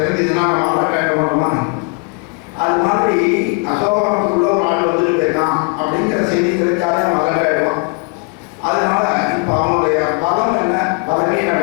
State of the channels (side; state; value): right; quieter; 31.8 dB